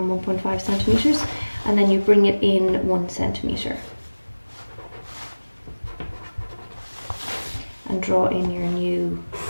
1.5 centimeters and then you bring it in 1 centimeter. And draw in your new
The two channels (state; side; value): inverted; both; correlation -1.00